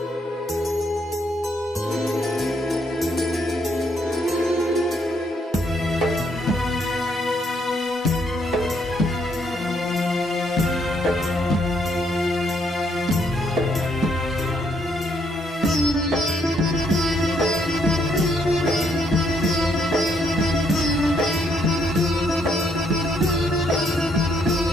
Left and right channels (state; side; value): normal; both; correlation 0.72